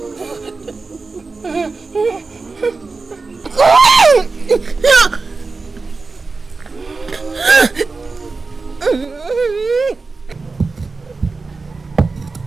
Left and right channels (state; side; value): quieter; left; 4.0 dB